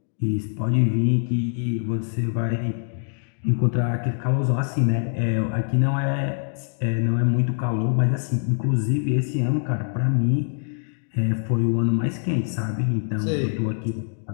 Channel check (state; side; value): silent; right; digital silence